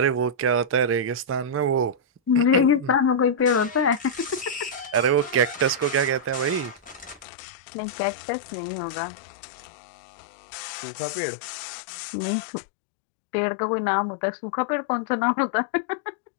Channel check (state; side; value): drops out; right; at 7.2 s